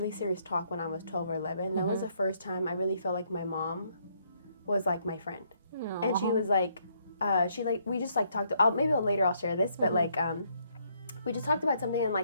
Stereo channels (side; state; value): both; inverted; correlation -0.71